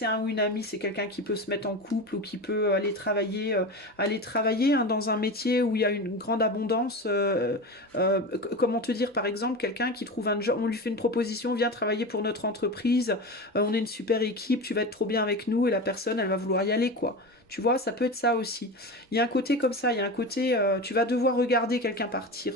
un ou une amie, c'est quelqu'un qui peut se mettre en couple ou qui peut aller travailler, hein, dans un métier où il y a une grande abondance. Comment te dire, par exemple, quelqu'un qui trouve un job, on lui fait une proposition, viens travailler pour notre entreprise, on est une super équipe, tu vas être trop bien avec nous, et la personne, elle va vouloir y aller, quoi. Tu vois, ça peut être ça aussi. Il y a un côté comme ça, il y a un côté, tu vas devoir regarder quelqu'un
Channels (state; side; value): normal; both; correlation 0.26